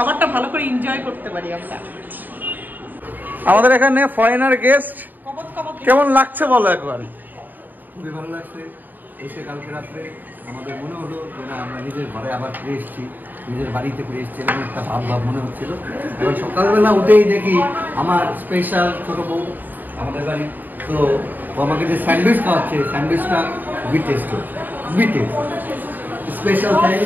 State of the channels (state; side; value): late; left; 0.088 ms